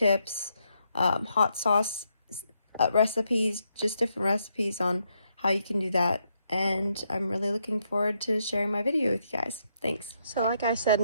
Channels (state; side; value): inverted; both; correlation -0.78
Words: hot sauce recipes, just different recipes on how you can do that. And I'm really looking forward to sharing my video with you guys. Thanks. So like I said